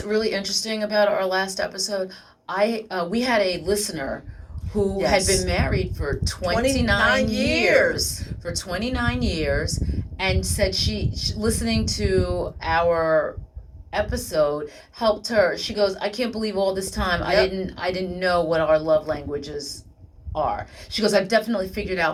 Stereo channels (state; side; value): identical; both; correlation 1.00